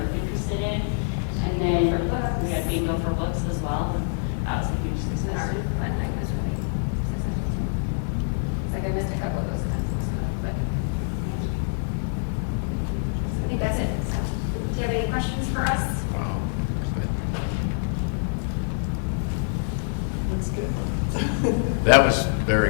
interested in. And then we had bingo for books as well. That was a huge And success. our fun night was really successful too. It's like I missed a couple of those kinds of stuff, but I think that's it. So, do you have any questions for us? Wow. Looks good. That was very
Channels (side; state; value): right; silent; digital silence